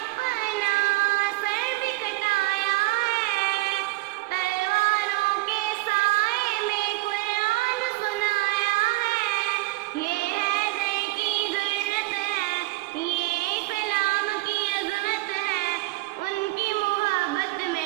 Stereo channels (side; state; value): left; quieter; 21.5 dB